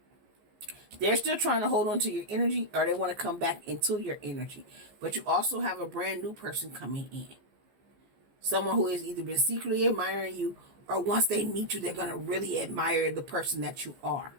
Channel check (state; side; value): late; left; 15 ms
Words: They're still trying to hold on to your energy, or they want to come back into your energy. But you also have a brand new person coming in. Someone who has either been secretly admiring you, or once they meet you, they're going to really admire the person that you are.